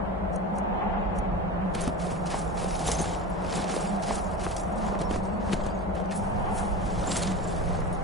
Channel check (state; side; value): normal; both; correlation 0.28